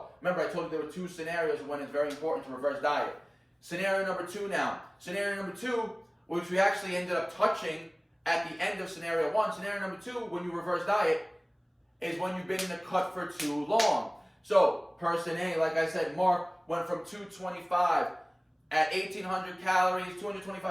Remember, I told you there were 2 scenarios when it's very important to reverse diet. Scenario number 2 now. Scenario number 2, which we actually ended up touching at the end of scenario 1. Scenario number 2, when you reverse diet, is when you've been in a cut for too long. So, person A, like I said, Mark went from 225 at 1,800 calories,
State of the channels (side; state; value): both; identical; correlation 1.00